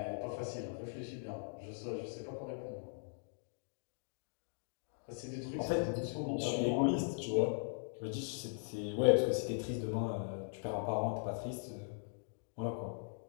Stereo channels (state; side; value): silent; right; digital silence